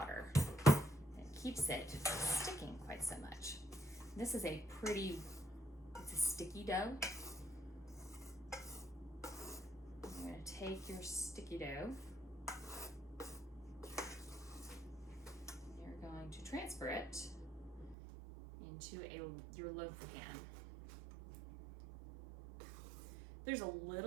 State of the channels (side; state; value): left; drops out; at 17.9 s